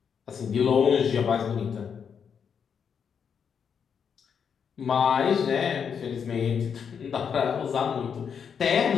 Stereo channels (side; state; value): right; quieter; 7.0 dB